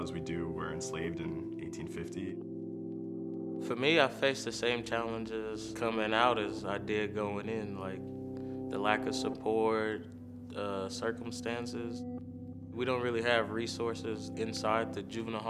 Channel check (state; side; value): identical; both; correlation 1.00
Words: we do were enslaved in 1850. For me, I faced the same challenges coming out as I did going in, like the lack of support, circumstances. We don't really have resources inside the juvenile